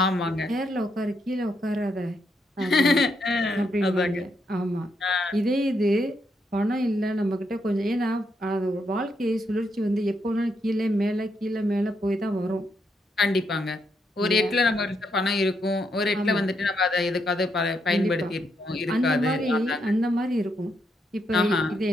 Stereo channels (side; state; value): both; normal; correlation 0.79